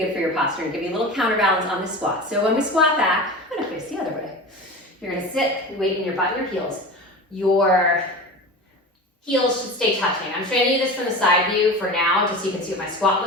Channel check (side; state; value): both; normal; correlation 0.32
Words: good for your posture and give you a little counterbalance on the squat. So when we squat back, I'm going to face the other way. You're going to sit, weight in your butt and your heels. Your heels should stay touching. I'm showing you this from the side view for now, just so you can see what my squat